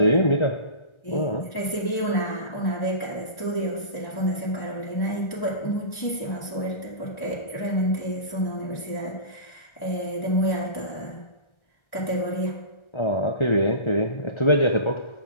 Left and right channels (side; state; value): right; late; 1.3 ms